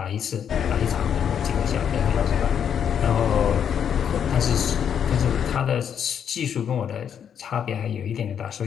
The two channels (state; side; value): quieter; right; 8.3 dB